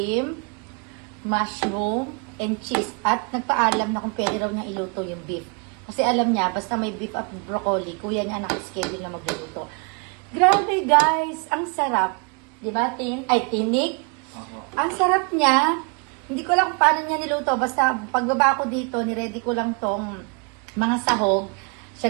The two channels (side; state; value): left; quieter; 35.3 dB